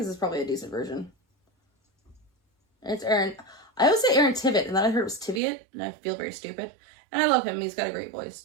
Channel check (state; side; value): drops out; left; at 5.4 s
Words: this is probably a decent version. It's Aaron. I always say Aaron Tveit, and then I heard it was Tiviot, and I feel very stupid. And I love him. He's got a great